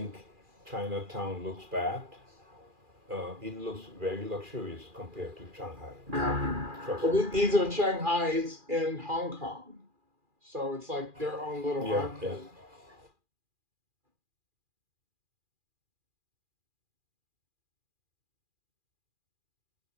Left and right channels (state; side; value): late; left; 2.4 ms